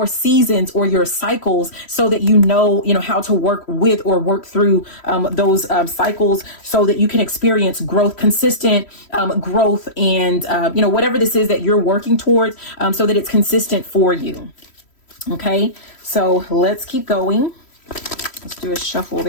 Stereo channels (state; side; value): late; right; 3.1 ms